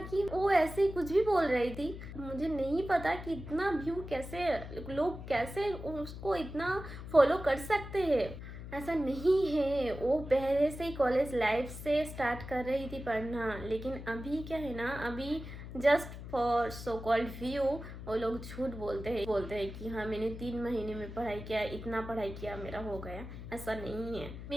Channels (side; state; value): left; noise; hum, 11 dB below the sound